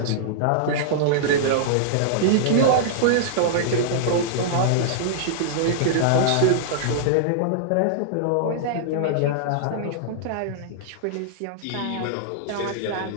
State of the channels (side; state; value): both; different; correlation -0.02